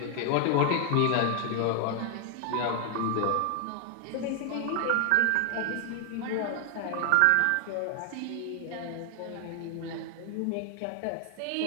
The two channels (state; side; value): different; both; correlation 0.00